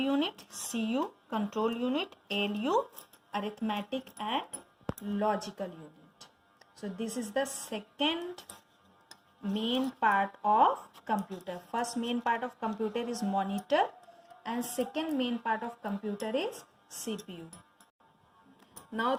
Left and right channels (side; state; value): both; identical; correlation 1.00